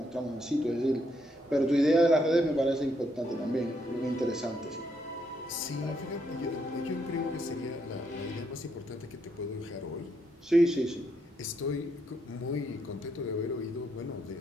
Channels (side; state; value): both; normal; correlation 0.76